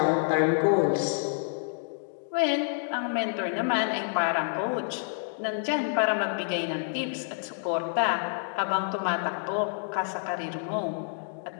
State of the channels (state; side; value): silent; right; digital silence